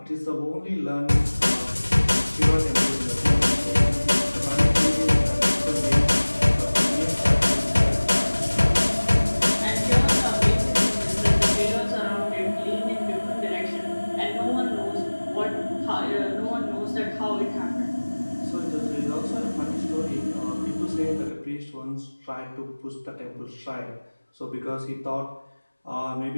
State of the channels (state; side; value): inverted; both; correlation -1.00